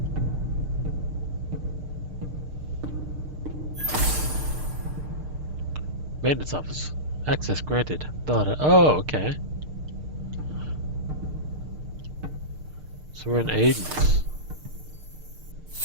Maintenance office. Access granted. Oh, okay. So we're in Aiden's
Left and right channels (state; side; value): late; left; 6.6 ms